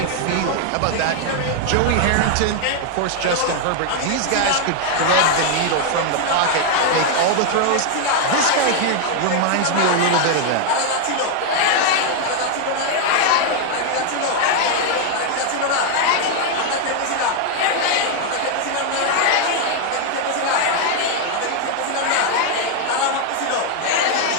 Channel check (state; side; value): different; both; correlation 0.00